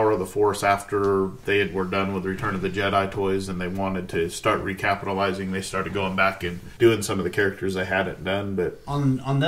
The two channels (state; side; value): identical; both; correlation 1.00